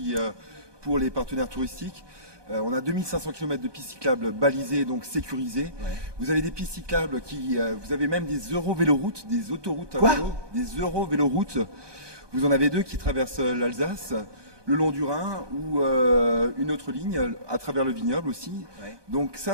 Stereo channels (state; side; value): late; left; 1.2 ms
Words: pour les partenaires touristiques. On a 2500 km de pistes cyclables balisées, donc sécurisées. Vous avez des pistes cyclables vous avez même des eurovéloroutes, des autoroutes à vélo, des eurovéloroutes. Vous en avez 2 qui traversent l'Alsace, le long du Rhin, ou une autre ligne à travers le vignoble aussi. Donc